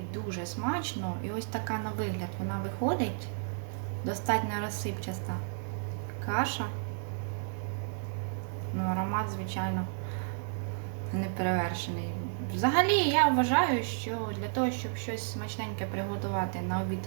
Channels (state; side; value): silent; left; 56 dB below the other